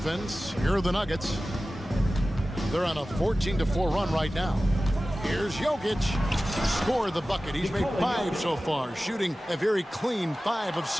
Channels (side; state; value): both; normal; correlation 0.96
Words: here are the Nuggets. They're on a 14-4 run right now. Here's Jokic. Scored the bucket. He's made 5 so far, shooting a very clean 5 of